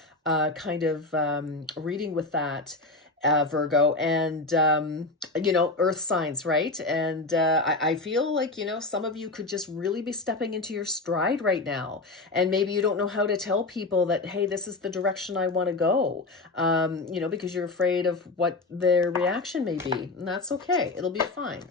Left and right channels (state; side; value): quieter; right; 3.2 dB